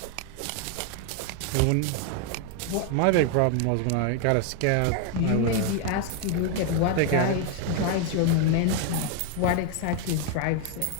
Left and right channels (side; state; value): both; different; correlation 0.01